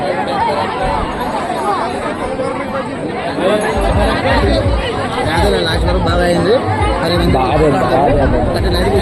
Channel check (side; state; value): both; identical; correlation 1.00